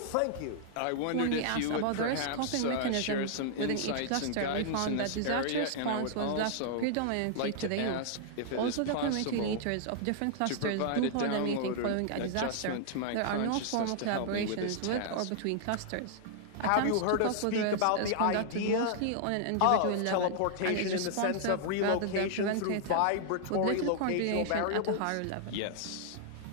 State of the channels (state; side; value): different; both; correlation -0.01